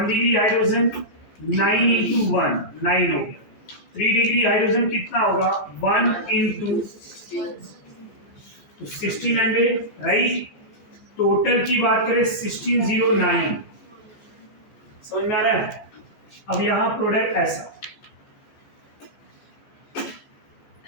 डिग्री हाइड्रोजन 9 इंटू 1 9 हो गया। 3 डिग्री हाइड्रोजन कितना होगा? 1 इंटू तो 1600, राइट? टोटल की बात करें 1609। समझ में आ रहा है? अब यहां प्रोडक्ट ऐसा,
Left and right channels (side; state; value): right; late; 14 ms